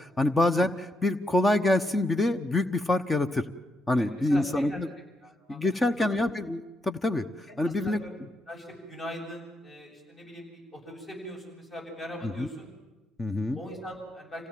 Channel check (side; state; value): both; normal; correlation 0.81